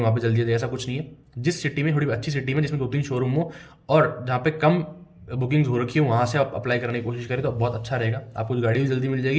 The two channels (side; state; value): both; identical; correlation 1.00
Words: वहाँ पर जल्दी आ जाएगी, ऐसा कुछ नहीं है। जिस सिटी में थोड़ी अच्छी सिटी में जिसमें 2-3 शोरूम हो और जहाँ पे कम बुकिंग्स हो रखी है वहाँ से आप अप्लाई करने की कोशिश करें तो बहुत अच्छा रहेगा। आपको गाड़ी भी जल्दी मिल